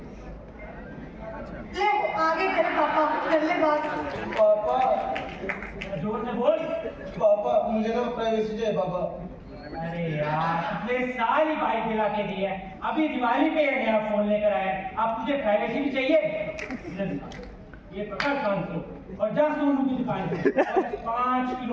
ले आगे तेरे पापा कर ले बात। पापा, जोर से बोल। पापा मुझे ना प्राइवेसी चाहिए पापा। अरे यार, पिछले साल ही बाइक दिला के दी है, अभी दिवाली पे नया फोन लेकर आया। अब तुझे प्राइवेसी भी चाहिए? ये पकड़ 500 और जा सोनू की दुकान पे 5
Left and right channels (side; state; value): both; identical; correlation 1.00